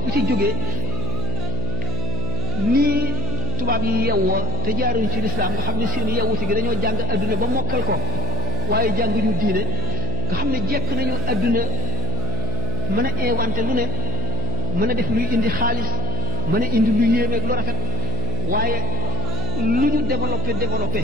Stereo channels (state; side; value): noise; left; hum, 2 dB below the sound